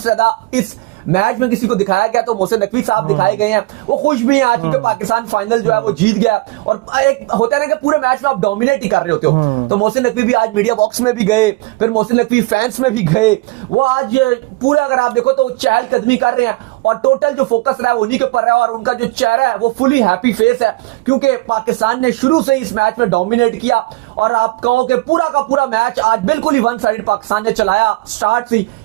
ज्यादा इस मैच में किसी को दिखाया गया तो मोहसिन नकवी साहब दिखाए गए हैं। वो खुश भी हैं आज क्योंकि पाकिस्तान फाइनल जो है वो जीत गया। और एक होता है ना कि पूरे मैच में आप डोमिनेट ही कर रहे होते हो, तो मोहसिन नकवी भी आज मीडिया बॉक्स में भी गए, फिर मोहसिन नकवी फैंस में भी गए। वो आज पूरा अगर आप देखो तो चहलकदमी कर रहे हैं और टोटल जो फोकस रहा है उन्हीं के ऊपर रहा है। और उनका जो चेहरा है वो फुली हैप्पी फेस है क्योंकि पाकिस्तान ने शुरू से इस मैच में डोमिनेट किया। और आप कहो कि पूरा का पूरा मैच आज बिल्कुल ही वन साइड पाकिस्तान ने चलाया, स्टार्ट से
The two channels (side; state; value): left; quieter; 22.1 dB